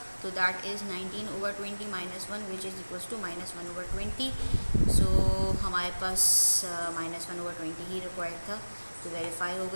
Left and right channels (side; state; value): both; inverted; correlation -1.00